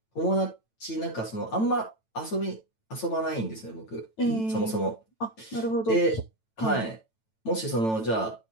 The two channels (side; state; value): right; late; 9.0 ms